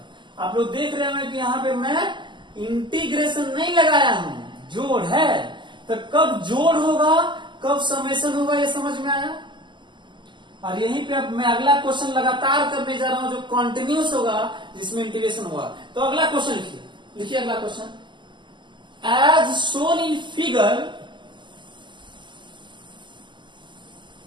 आप लोग देख रहे हैं कि यहाँ पे मैं इंटीग्रेशन नहीं लगाया हूं, जोड़ है। तो कब जोड़ होगा, कब समेशन होगा, ये समझ में आया? और यहीं पे अब मैं अगला क्वेश्चन लगातार करने जा रहा हूं जो कॉन्टिन्यूस होगा, जिसमें इंटीग्रेशन होगा। तो अगला क्वेश्चन लिखिए अगला question. As shown in figure,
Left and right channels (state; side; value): late; left; 0.23 ms